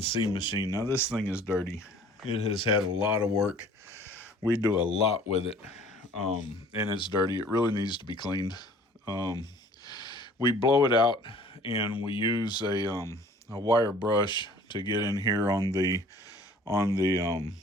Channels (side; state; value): both; normal; correlation 0.51